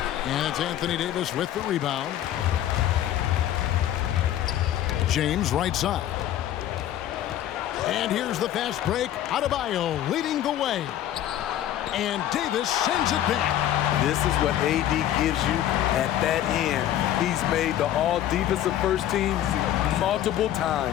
And it's Anthony Davis with the rebound. James right side. And here's the fast break. Adebayo leading the way. And Davis sends it back. This is what AD gives you at that end. He's made the all-defensive first teams multiple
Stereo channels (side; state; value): right; quieter; 12.0 dB